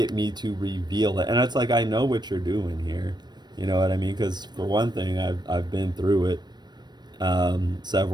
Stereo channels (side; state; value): left; late; 0.21 ms